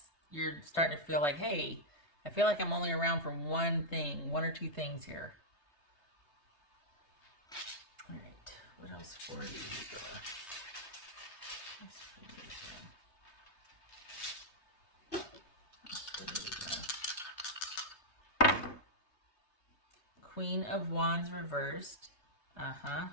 you're starting to feel like, hey, I feel like I'm only around for one or two things here. All right, what else for you? Queen of Wands reversed.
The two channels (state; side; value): late; right; 3.2 ms